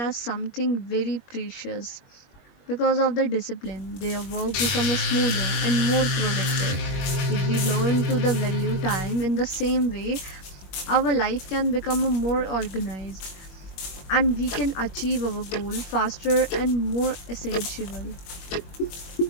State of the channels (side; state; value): right; late; 21 ms